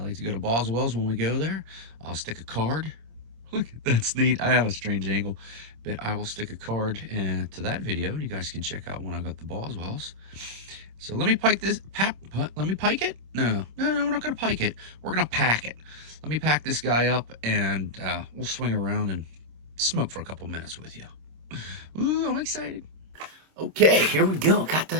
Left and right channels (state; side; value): late; left; 26 ms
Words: to go to Boswell's when we go there. I'll stick a card. Look, that's neat. I have a strange angle, but I will stick a card to that video, and you guys can check out when I got the Boswell's. So let me pike this. Let me pike it? No, we're not going to pike it. We're going to pack it. Let me pack this guy up, and we'll swing around and smoke for a couple minutes with you. Ooh, I'm excited. Okay, here we go. Got